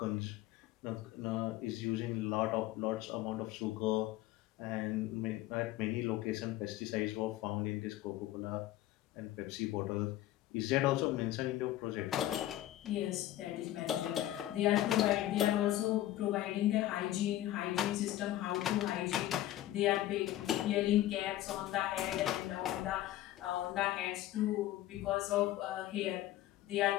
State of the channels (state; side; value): quieter; right; 14.3 dB